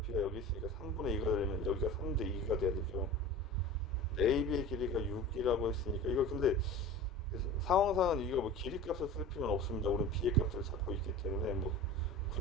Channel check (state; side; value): normal; both; correlation 0.35